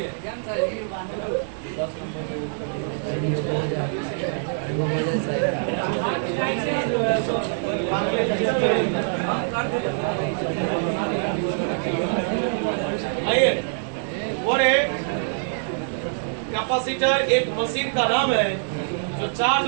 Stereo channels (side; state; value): left; silent; 62 dB below the other